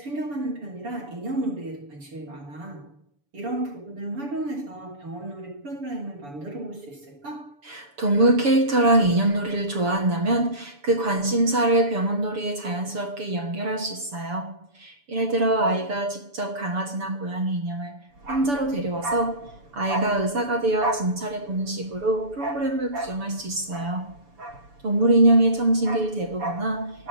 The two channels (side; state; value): left; late; 7.0 ms